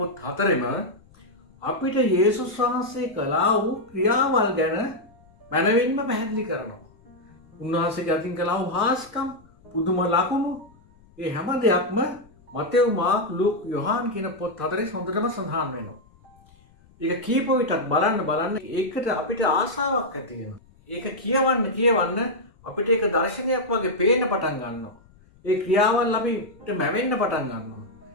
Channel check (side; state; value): left; noise; rumble, 28 dB below the sound